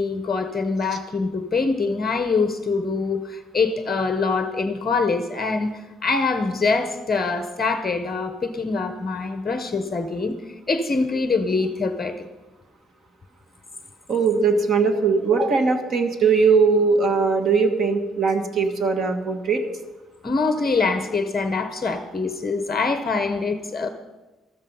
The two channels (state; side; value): normal; both; correlation 0.63